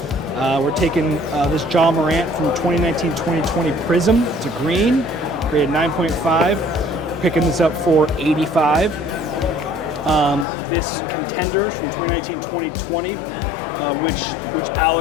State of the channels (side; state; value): right; drops out; at 10.5 s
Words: We're taking this Ja Morant from 2019-2020 Prism. It's a green, graded 9.5. Picking this up for 85. This Contenders from 2019-2020, which